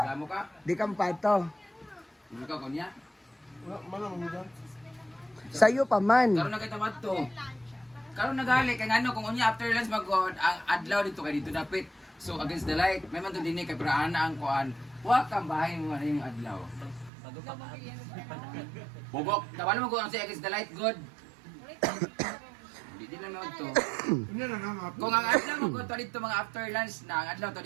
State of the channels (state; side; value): drops out; left; at 17.1 s